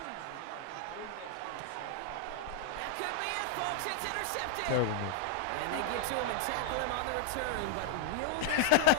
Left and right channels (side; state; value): both; different; correlation 0.00